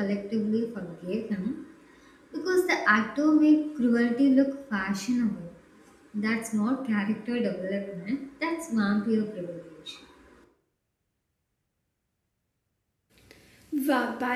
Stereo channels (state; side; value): identical; both; correlation 1.00